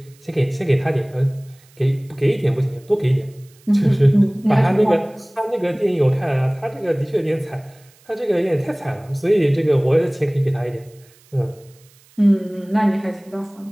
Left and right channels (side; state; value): right; noise; hiss, 29 dB below the sound